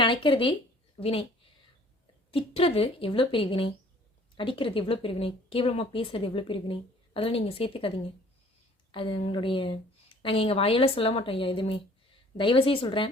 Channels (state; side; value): normal; both; correlation 0.54